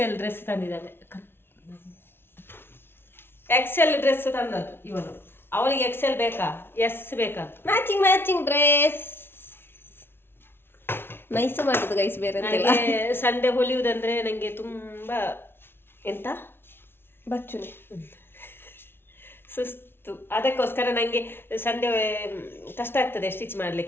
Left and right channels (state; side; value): late; right; 0.11 ms